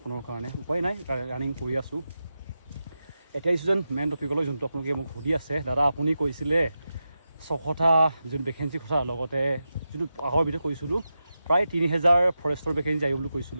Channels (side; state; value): both; inverted; correlation -0.90